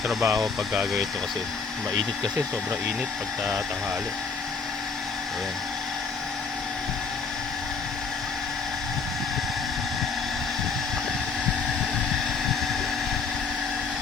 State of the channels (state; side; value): quieter; right; 5.1 dB